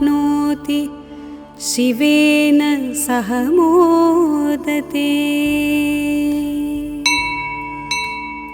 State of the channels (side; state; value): both; identical; correlation 1.00